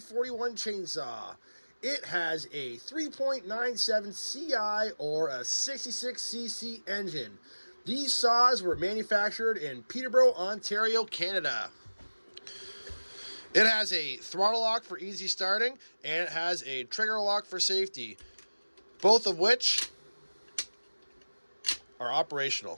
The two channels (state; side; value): inverted; both; correlation -1.00